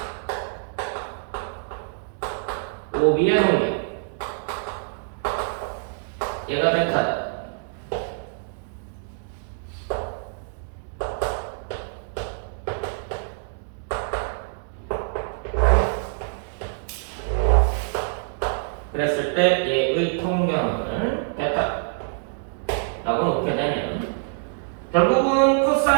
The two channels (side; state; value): left; silent; digital silence